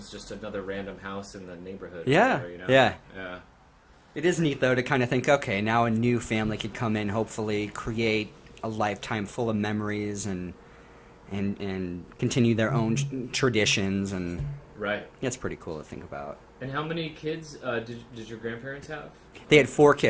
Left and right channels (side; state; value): both; identical; correlation 1.00